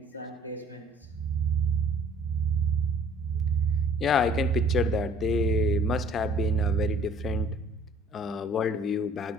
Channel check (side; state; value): both; normal; correlation 0.54